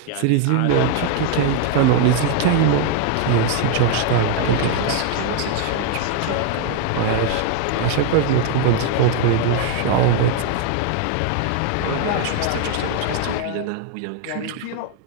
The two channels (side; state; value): both; different; correlation 0.00